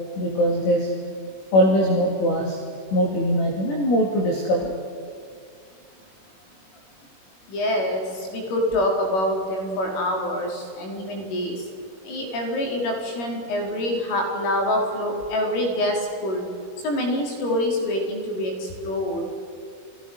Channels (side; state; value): right; late; 21 ms